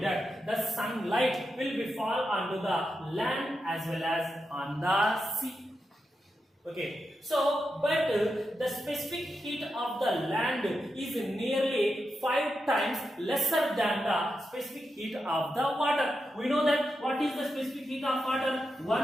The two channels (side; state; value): both; normal; correlation 0.87